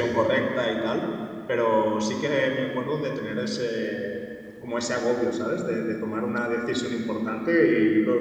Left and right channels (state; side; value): identical; both; correlation 1.00